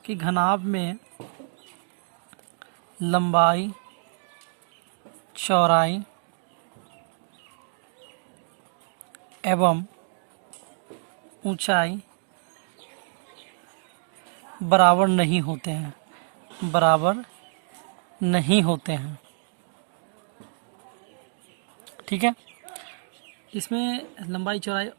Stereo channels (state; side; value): silent; left; digital silence